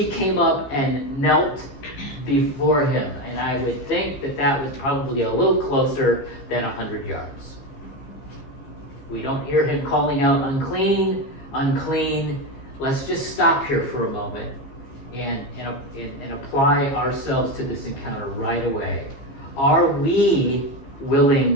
came up and knelt before him, and I would think that that was probably a little closer than 100 yards. We don't hear him calling out, unclean, unclean. Let's just stop here for a moment and apply ourselves to this encounter right away. Are we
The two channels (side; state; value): right; late; 15 ms